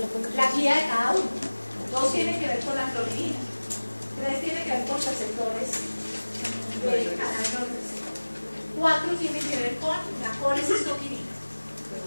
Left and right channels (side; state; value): both; inverted; correlation -1.00